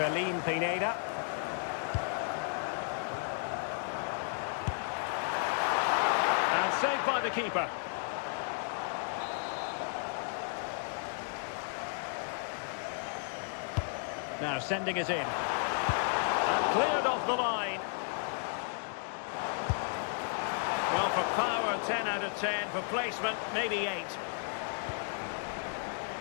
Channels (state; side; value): silent; right; 55 dB below the other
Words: Pineda. And saved by the keeper. Now sending it in. Cleared off the line. Well, for power, 10 out of 10. For placement, maybe 8.